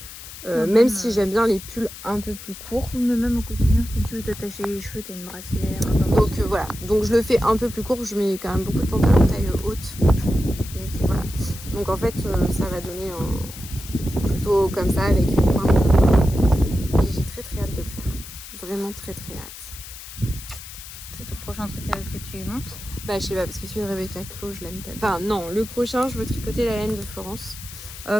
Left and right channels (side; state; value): left; noise; hiss, 14 dB below the sound